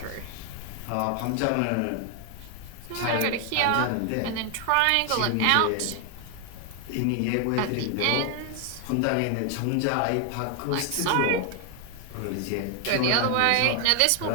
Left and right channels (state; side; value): different; both; correlation 0.00